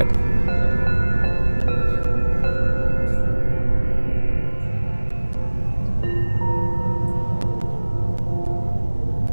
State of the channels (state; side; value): inverted; both; correlation -1.00